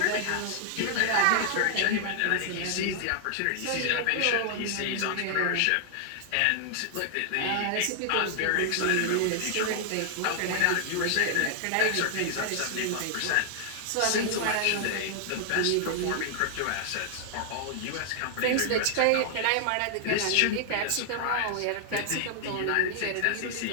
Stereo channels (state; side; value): different; both; correlation 0.00